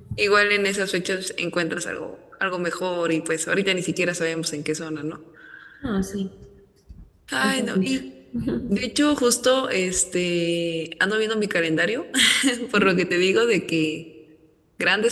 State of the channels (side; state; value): both; identical; correlation 1.00